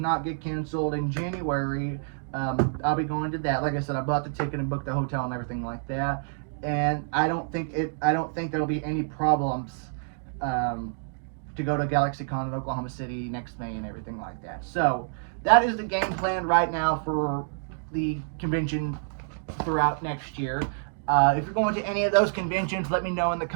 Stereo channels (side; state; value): left; silent; digital silence